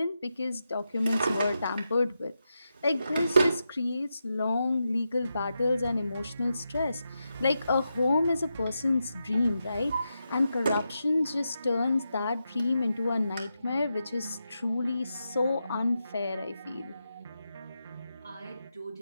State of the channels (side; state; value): both; inverted; correlation -0.88